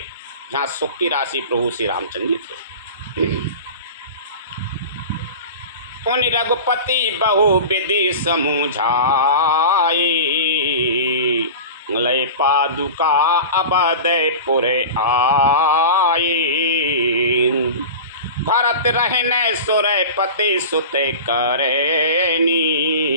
जहाँ सुख की राशि प्रभु श्री रामचंद्र जी थे। पुनि रघुपति बहु विधि समुझाई, लय पादुका अबदपुरे आई। भरत रहने सुरपति सुते करेनी,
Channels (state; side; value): inverted; both; correlation -0.32